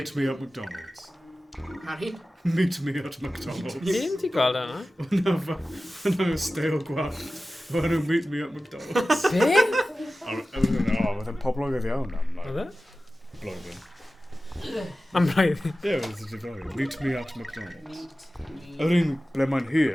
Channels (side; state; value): both; normal; correlation 0.95